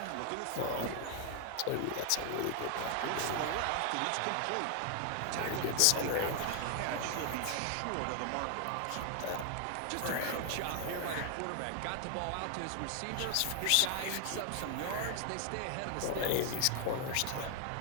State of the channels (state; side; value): different; both; correlation 0.00